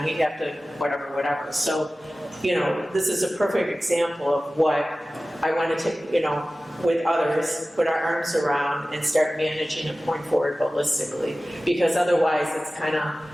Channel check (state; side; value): normal; both; correlation 0.96